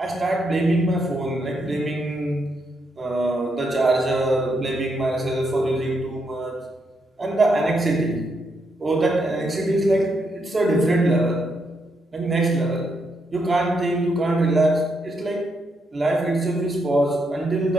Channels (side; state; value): both; normal; correlation 0.79